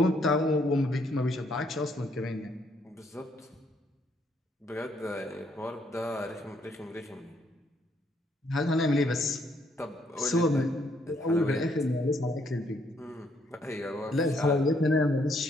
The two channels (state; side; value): normal; both; correlation 0.71